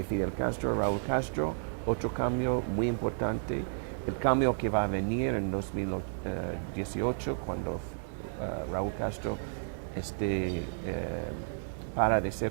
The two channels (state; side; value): silent; left; digital silence